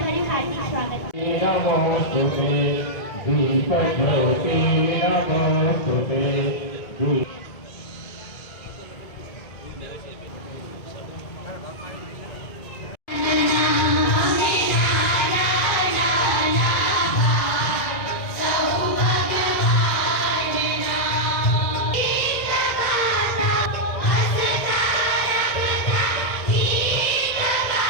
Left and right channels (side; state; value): right; late; 2.0 ms